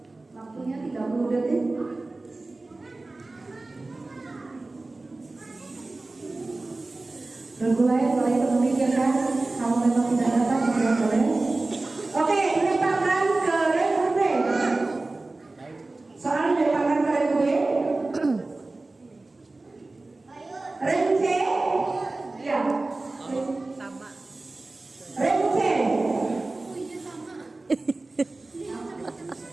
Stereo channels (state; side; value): quieter; left; 3.2 dB